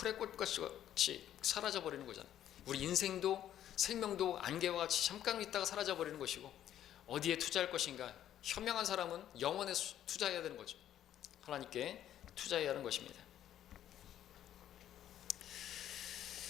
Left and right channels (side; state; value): right; quieter; 11.3 dB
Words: 꽃같이 사라져 버리는 거잖아요. 우리 인생도 생명도 안개와 같이 잠깐 있다가 사라져 버리는 것이고, 어디에 투자할 것인가, 현명한 사람은 영원에 투자해야 되는 거죠. 하나님께 투자해야 하는 것입니다.